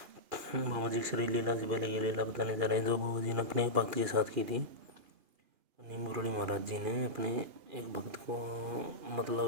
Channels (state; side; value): late; left; 2.8 ms